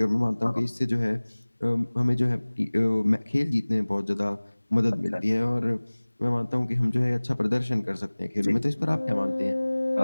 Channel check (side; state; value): both; inverted; correlation -1.00